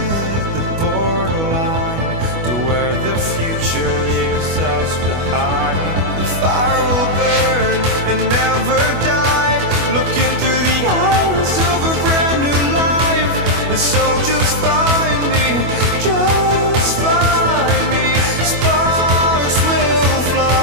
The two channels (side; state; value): left; late; 25 ms